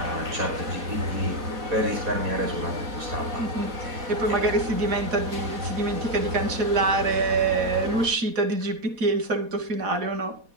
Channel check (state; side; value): late; left; 4.1 ms